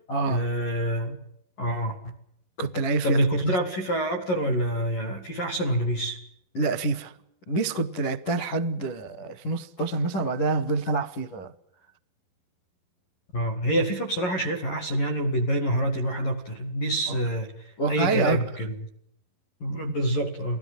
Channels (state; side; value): late; right; 11 ms